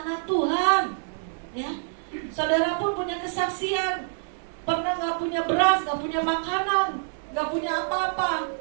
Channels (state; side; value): silent; left; digital silence